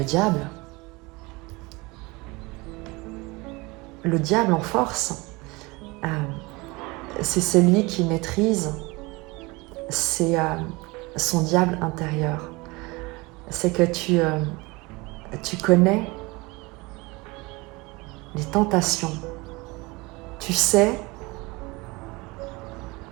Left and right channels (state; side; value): quieter; left; 24.3 dB